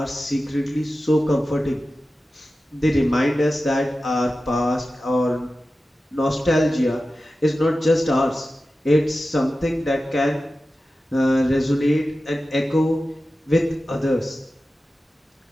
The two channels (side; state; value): both; normal; correlation 0.94